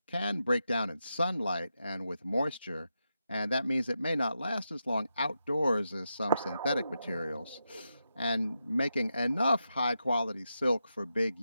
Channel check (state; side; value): inverted; both; correlation -0.87